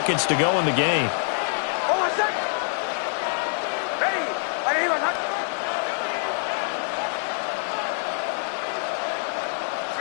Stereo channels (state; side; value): silent; right; 62 dB below the other